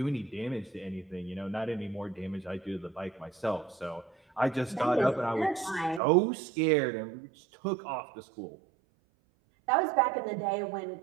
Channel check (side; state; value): left; drops out; at 6.0 s